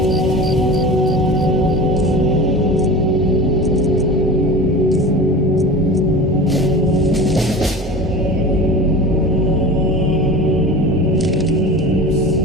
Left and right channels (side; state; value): both; normal; correlation 0.34